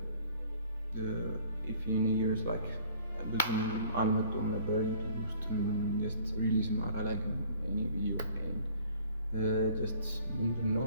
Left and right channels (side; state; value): both; inverted; correlation -0.54